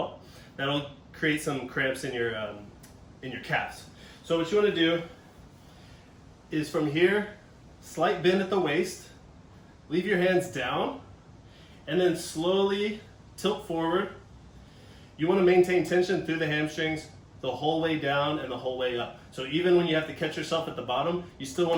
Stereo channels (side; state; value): both; identical; correlation 1.00